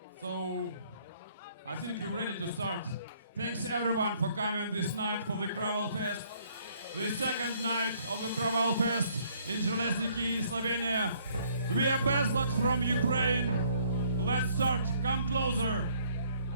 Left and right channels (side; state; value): both; inverted; correlation -0.64